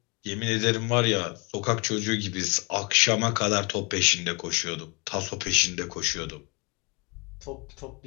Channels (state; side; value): quieter; right; 30.5 dB